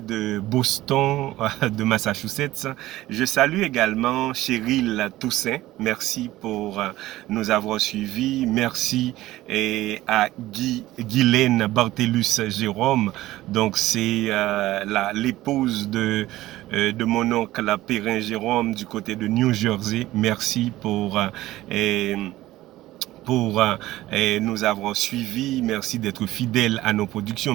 de Boston, de Massachusetts. Je salue également Cheryl Toussaint. Merci pour nous avoir suivis. Merci à Guylaine Bartellus Jérôme. Donc c'est l'épouse de mon oncle Perrin Jérôme du côté de New Jersey. Merci pour nous avoir suivis. Merci d'être fidèles à nos productions.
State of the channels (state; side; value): quieter; left; 16.2 dB